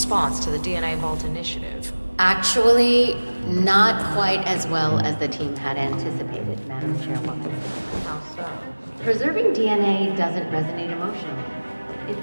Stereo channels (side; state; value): both; inverted; correlation -1.00